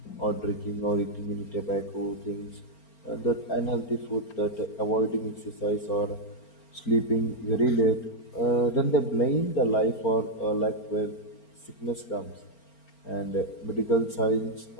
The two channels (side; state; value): right; late; 4.4 ms